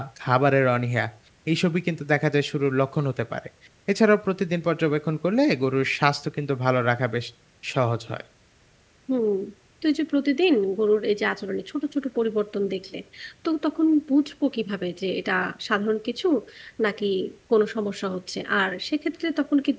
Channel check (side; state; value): both; identical; correlation 1.00